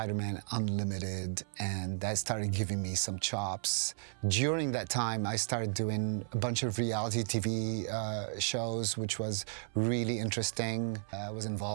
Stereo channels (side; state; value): left; silent; 55 dB below the other